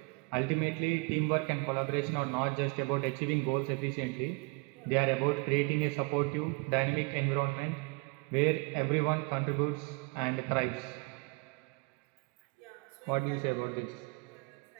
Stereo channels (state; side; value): quieter; left; 29.7 dB